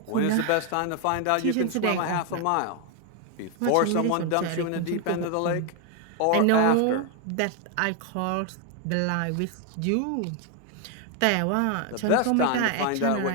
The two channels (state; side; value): different; both; correlation 0.01